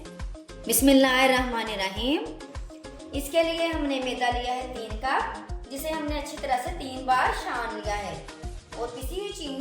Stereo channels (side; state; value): both; identical; correlation 1.00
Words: बिस्मिल्लाहिर्रहमानिर्रहीम। इसके लिए हमने मैदा लिया है 3 कप, जिसे हमने अच्छी तरह से 3 बार छान लिया है। और पिसी हुई